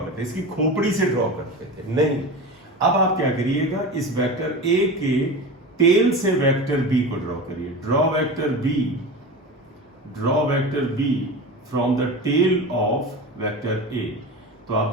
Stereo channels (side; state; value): both; normal; correlation 0.29